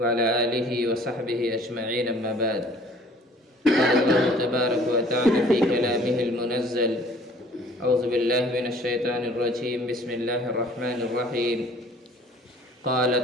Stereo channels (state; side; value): normal; both; correlation 0.53